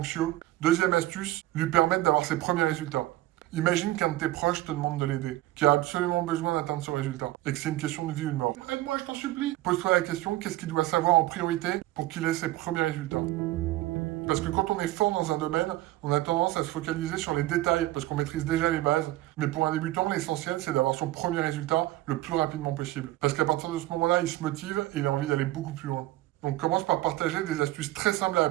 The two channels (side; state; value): left; quieter; 16.6 dB